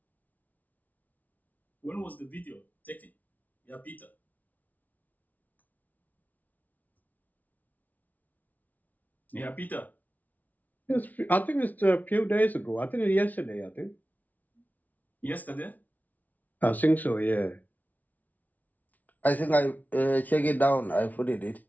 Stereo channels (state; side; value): late; right; 0.076 ms